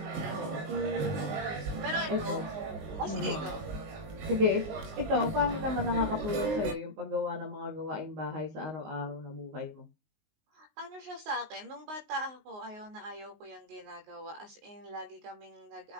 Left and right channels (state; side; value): late; left; 19 ms